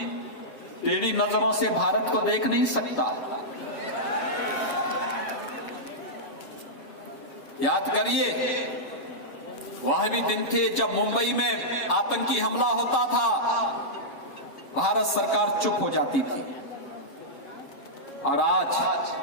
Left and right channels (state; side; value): late; right; 7.2 ms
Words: टेढ़ी नजरों से भारत को देख नहीं सकता। याद करिए, वह भी दिन थे जब मुंबई में आतंकी हमला होता था, भारत सरकार चुप हो जाती थी। और आज